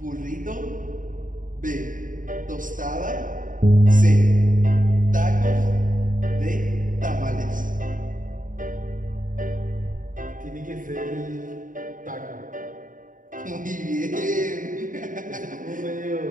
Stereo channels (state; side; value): late; left; 0.39 ms